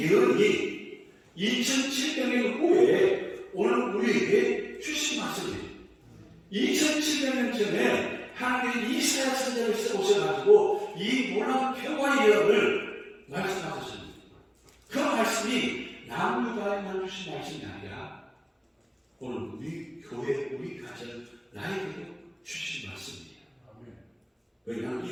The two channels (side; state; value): both; identical; correlation 1.00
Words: 예언이 2700년 후에 오늘 우리에게 주신 말씀이에요. 2700년 전에 하나님이 이사야 선지자를 오셔가지고 이 놀라운 평화의 예언을 말씀하셨습니다. 그 말씀이 남유다에만 주신 말씀이 아니라 오늘 우리 교회, 우리 가정, 나에게도 주신 말씀입니다. 왜냐하면